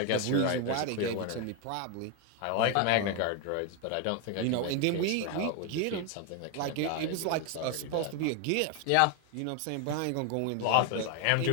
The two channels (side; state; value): both; different; correlation 0.01